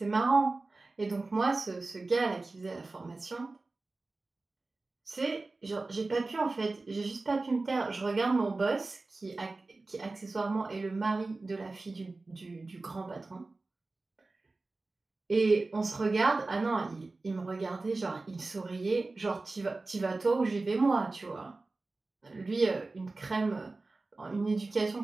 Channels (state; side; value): quieter; left; 3.4 dB